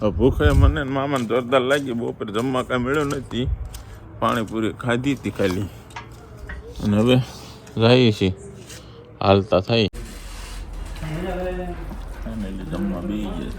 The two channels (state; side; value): identical; both; correlation 1.00